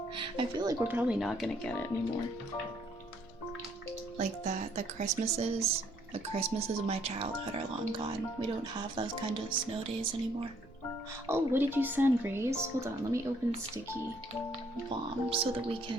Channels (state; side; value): noise; right; rumble, 24 dB below the sound